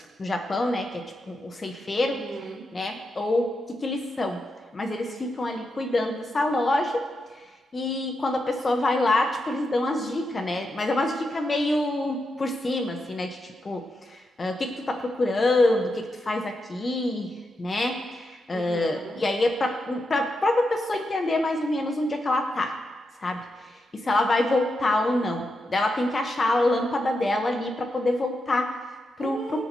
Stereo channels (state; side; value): normal; both; correlation 0.86